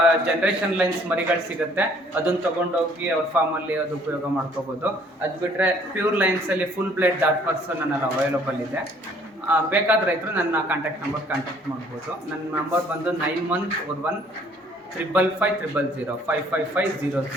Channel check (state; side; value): normal; both; correlation 0.59